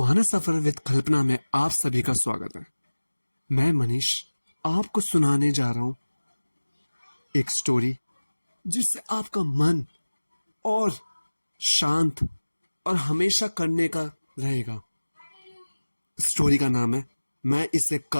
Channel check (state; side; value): inverted; both; correlation -1.00